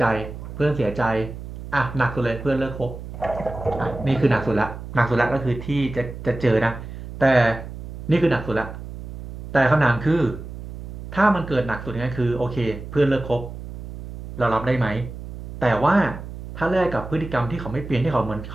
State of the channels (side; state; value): right; noise; hum, 11 dB below the sound